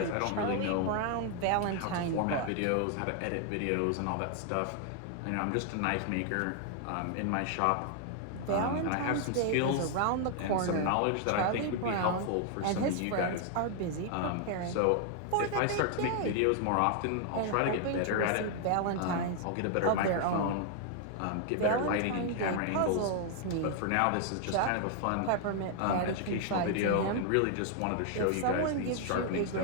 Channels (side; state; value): both; different; correlation 0.00